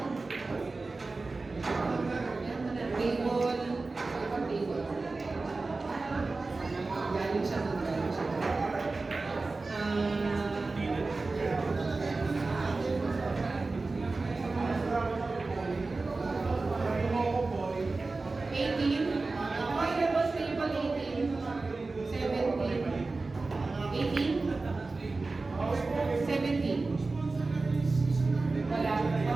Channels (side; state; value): left; quieter; 3.6 dB